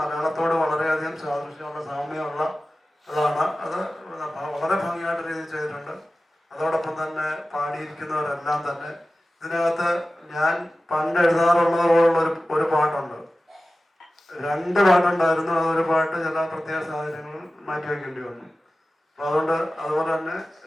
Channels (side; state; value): both; normal; correlation 0.95